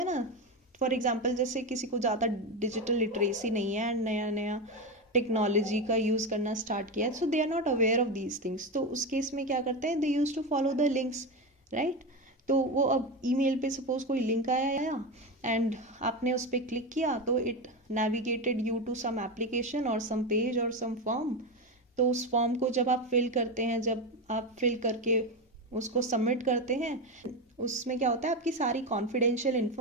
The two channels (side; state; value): both; normal; correlation 0.16